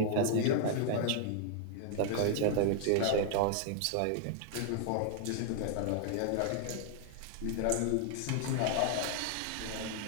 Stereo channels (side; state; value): both; different; correlation 0.00